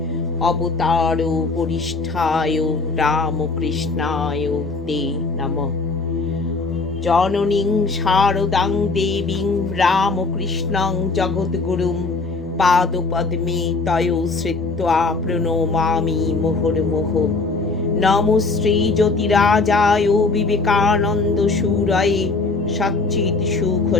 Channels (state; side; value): quieter; right; 3.9 dB